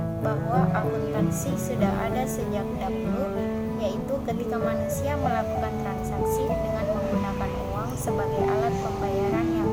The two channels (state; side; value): identical; both; correlation 1.00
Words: bahwa akuntansi sudah ada sejak dahulu, yaitu ketika manusia melakukan transaksi dengan menggunakan uang sebagai alat pembayaran yang